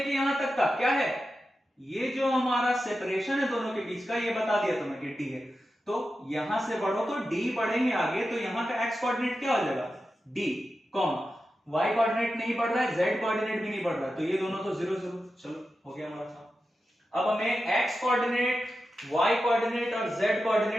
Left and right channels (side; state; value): both; normal; correlation 0.91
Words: यहां तक का क्या है, ये जो हमारा सेपरेशन है दोनों के बीच का, ये बता दिया तुम्हें कि डी है। तो यहां से बढ़ो तो डी बढ़ेंगे आगे, तो यहां का एक्स कोऑर्डिनेट क्या हो जाएगा, डी, कॉमा y कोऑर्डिनेट नहीं बढ़ रहा है, z कोऑर्डिनेट भी नहीं बढ़ रहा है, तो ये दोनों तो 0, 0। चलो हो गया हमारा काम। अब हमें x कोऑर्डिनेट, y कोऑर्डिनेट और z